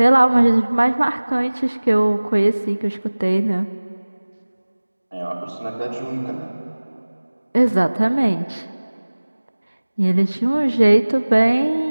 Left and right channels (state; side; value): inverted; both; correlation -1.00